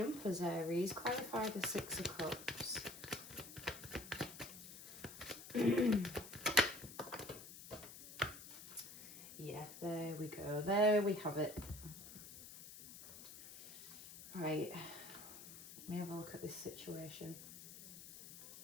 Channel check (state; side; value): noise; left; hiss, 13 dB below the sound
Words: Aries. Clarify the 6 of Cups. Yeah, there we go. There we have it. Right. Let me have a look at this situation.